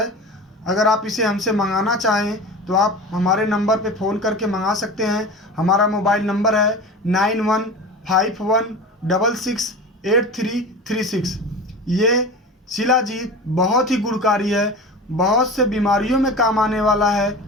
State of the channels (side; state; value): both; normal; correlation 0.32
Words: अगर आप इसे हमसे मंगाना चाहें तो आप हमारे नंबर पे फ़ोन करके मंगा सकते हैं। हमारा मोबाइल नंबर है 9151668336। ये शिलाजीत बहुत ही गुणकारी है, बहुत से बीमारियों में काम आने वाला है।